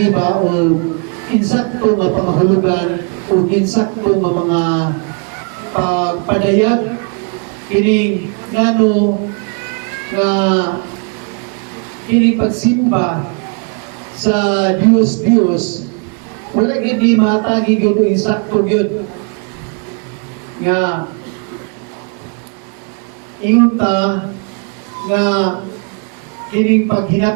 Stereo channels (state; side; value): quieter; left; 37.8 dB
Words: ba o insakto nga pangahulugan o insakto nga mga pagpadayag kini ngano nga kini pagsimba sa Dios wala gid ni matagi gyud o insakto gyud nga ingon ta nga kining